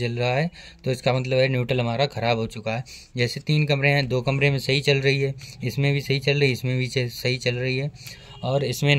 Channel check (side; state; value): both; identical; correlation 1.00